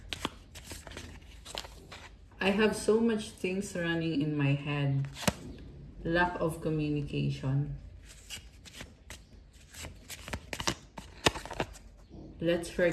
I have so much things running in my head. Lack of communication. Let's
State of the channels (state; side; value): identical; both; correlation 1.00